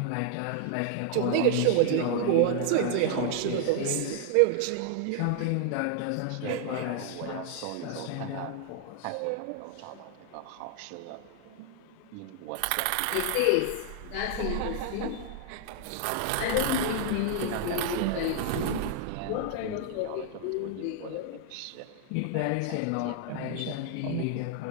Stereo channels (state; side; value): different; both; correlation 0.00